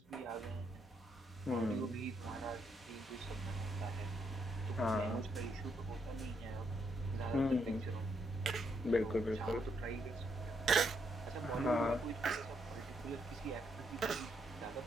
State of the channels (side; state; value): both; normal; correlation 0.76